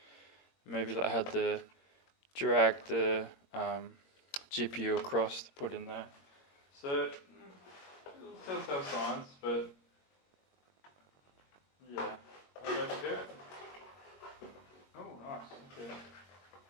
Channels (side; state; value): right; late; 21 ms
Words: Maybe they had to drag the GPU across to put in there. So, telltale signs, but yeah. I'll go to it. Oh, nice. Okay.